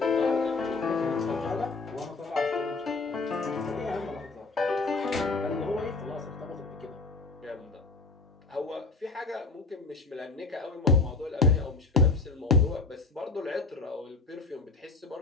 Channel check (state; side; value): quieter; right; 3.7 dB